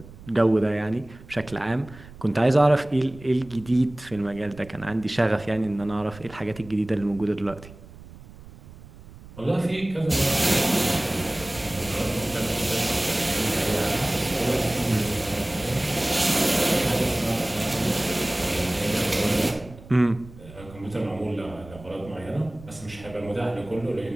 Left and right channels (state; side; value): noise; right; rumble, 19 dB below the sound